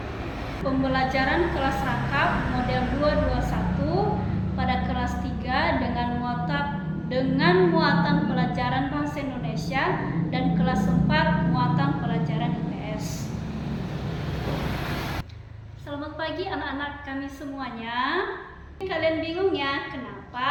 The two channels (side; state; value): both; identical; correlation 1.00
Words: pembelajaran kelas rangkap model 221 pada kelas 3 dengan muatan pelajaran bahasa Indonesia dan kelas 4 muatan pelajaran IPS. Selamat pagi anak-anak kami semuanya. Kalian bingung ya,